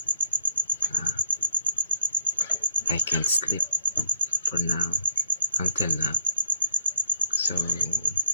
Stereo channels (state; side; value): inverted; both; correlation -0.75